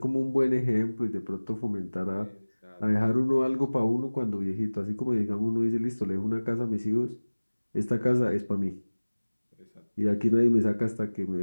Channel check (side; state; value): both; inverted; correlation -1.00